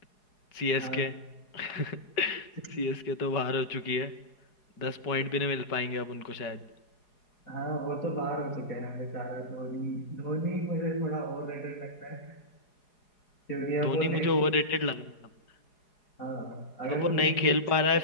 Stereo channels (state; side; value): late; right; 4.8 ms